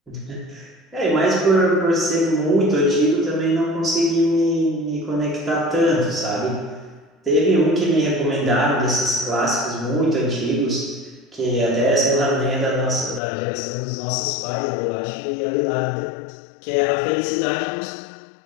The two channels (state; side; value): drops out; right; at 13.2 s